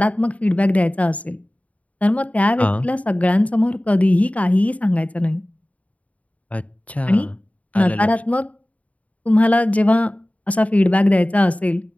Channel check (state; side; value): late; right; 0.068 ms